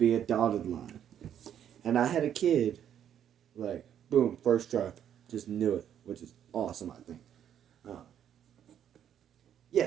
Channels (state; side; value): quieter; left; 9.7 dB